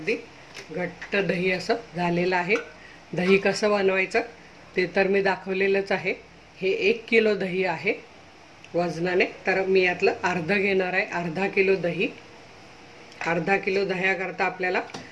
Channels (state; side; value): identical; both; correlation 1.00